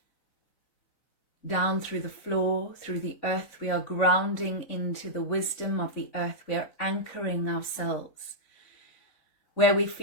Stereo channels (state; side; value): late; right; 3.9 ms